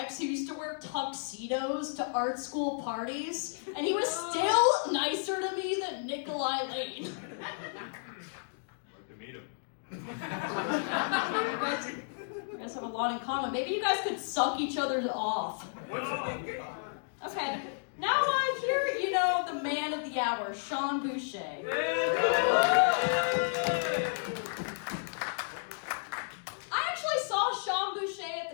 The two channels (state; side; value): silent; right; digital silence